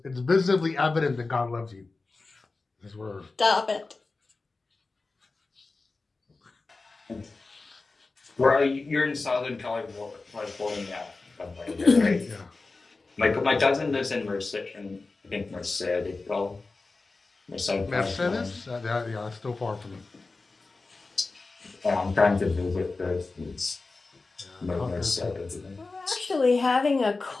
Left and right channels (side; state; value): right; quieter; 3.7 dB